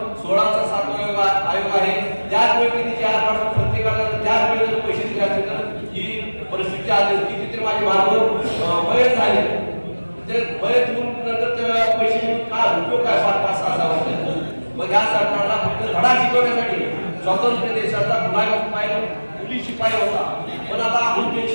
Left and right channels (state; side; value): inverted; both; correlation -1.00